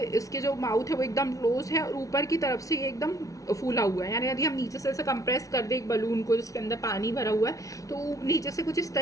इसके जो माउथ है वो एकदम क्लोज है और ऊपर की तरफ से ये एकदम फूला हुआ है, यानी यदि हम नीचे से ऐसे कंप्रेस कर दें एक बलून को जिसके अंदर पानी भरा हुआ है, तो नीचे से कुछ इस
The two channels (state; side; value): late; right; 0.17 ms